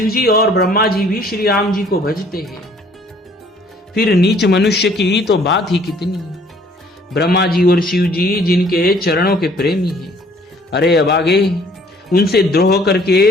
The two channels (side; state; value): both; normal; correlation 0.58